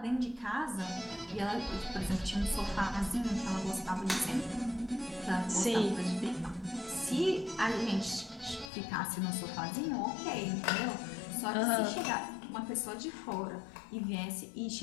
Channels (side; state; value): right; drops out; at 8.7 s